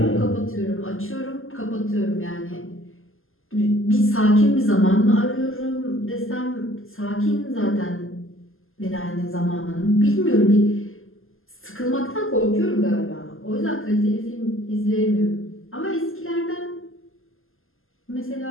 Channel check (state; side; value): late; right; 0.60 ms